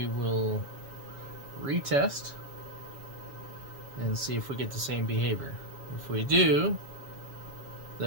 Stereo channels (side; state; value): left; late; 7.2 ms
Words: will retest and see if we get the same behavior. If we do,